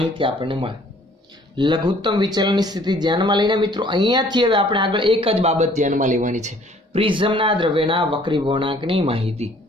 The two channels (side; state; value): both; normal; correlation 0.57